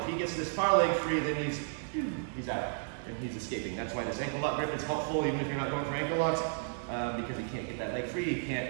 he gets this far leg free, then he's out and he's escaping. That's why this ankle lock grip is helpful, even if you're not going for ankle locks, because he can't get that leg free. He can't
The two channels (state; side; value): silent; left; digital silence